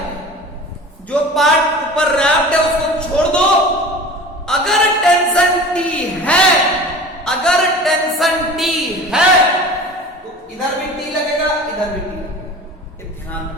जो पार्ट ऊपर रैप्ड है उसको छोड़ दो। अगर टेंशन T है तो इधर भी T लगेगा, इधर भी T लगेगा। ध्यान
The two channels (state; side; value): normal; both; correlation 0.39